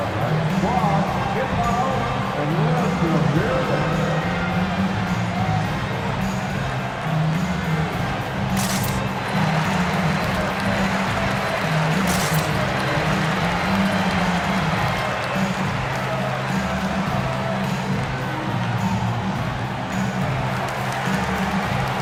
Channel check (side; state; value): both; identical; correlation 1.00